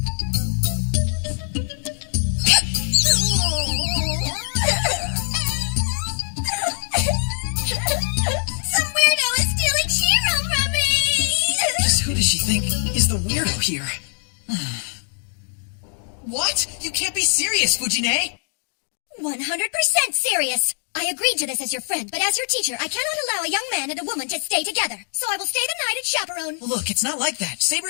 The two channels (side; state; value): right; silent; digital silence